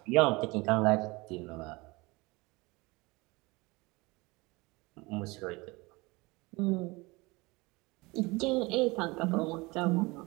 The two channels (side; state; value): left; quieter; 24.0 dB